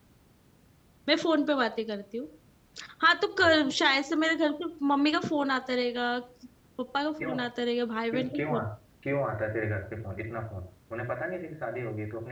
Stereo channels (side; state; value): both; identical; correlation 1.00